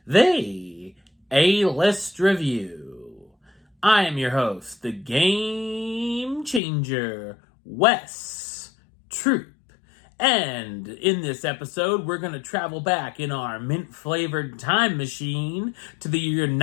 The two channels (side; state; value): right; drops out; at 6.6 s